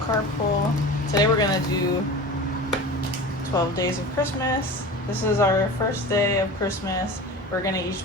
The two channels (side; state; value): both; normal; correlation 0.34